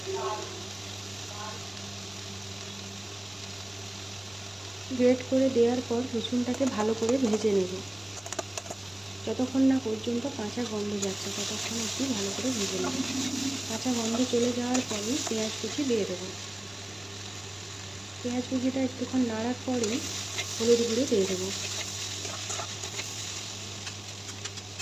গ্রেট করে দেওয়ার পর রসুনটাকে ভালো করে ভেজে নেব। যতক্ষণ না পর্যন্ত কাঁচা গন্ধ যাচ্ছে ততক্ষণ একটু ভালো করে ভেজে নেব। কাঁচা গন্ধ চলে যাওয়ার পরেই পেঁয়াজ কুচি দিয়ে দেব। পেঁয়াজ কুচিটা একটুক্ষণ নাড়ার পরেই হলুদ গুঁড়ো দিয়ে দেবো।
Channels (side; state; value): left; noise; rumble, 28 dB below the sound